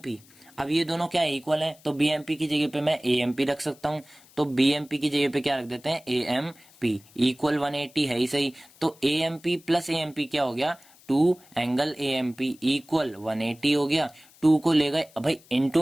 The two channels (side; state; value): left; noise; hiss, 26 dB below the sound